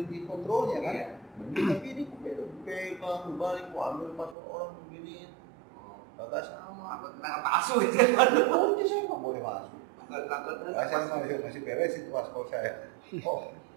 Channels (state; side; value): drops out; left; at 4.4 s